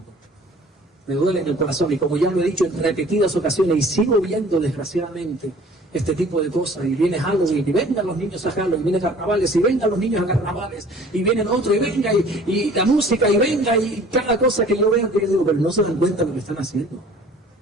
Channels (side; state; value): both; normal; correlation 0.50